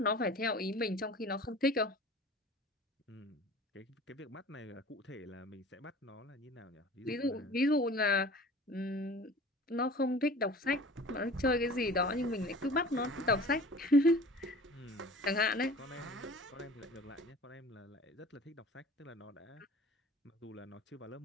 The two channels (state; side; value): normal; both; correlation 0.43